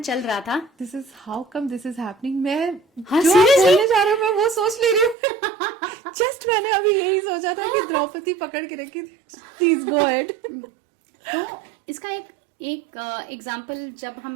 रहा था. This is how come this is happening. मैं हाँ, जो आप seriously? बोलने जा रहे हो मैं वो सोच ले रही हूँ. जस्ट मैंने अभी यही सोचा था कि द्रौपदी पकड़ के रखी. Please go ahead. तो इसका एक एग्जाम्पल जब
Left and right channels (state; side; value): drops out; left; at 5.2 s